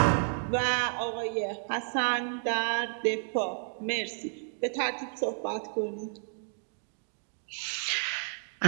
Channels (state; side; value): silent; left; digital silence